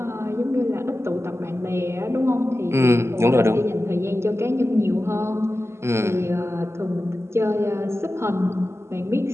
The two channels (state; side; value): late; left; 0.13 ms